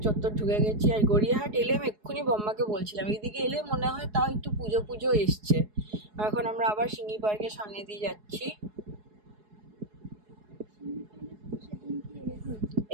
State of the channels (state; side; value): late; left; 4.7 ms